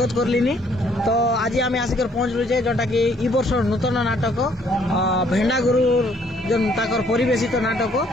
करलिनी तो आज आम आसिकर पहुंचलु जे जोटा कि ई वर्ष नूतन नाटक भेंडा गुरु जो ताकर परिवेशित नाटक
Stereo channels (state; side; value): normal; both; correlation 0.64